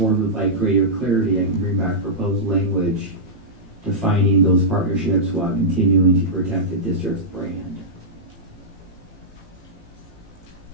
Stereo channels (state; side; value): normal; both; correlation -0.11